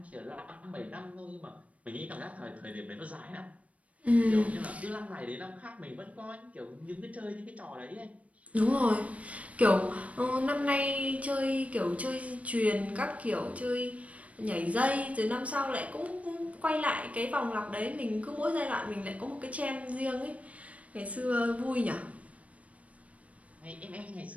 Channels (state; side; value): late; left; 0.066 ms